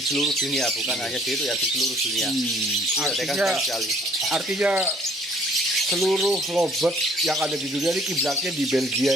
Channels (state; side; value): normal; both; correlation 0.59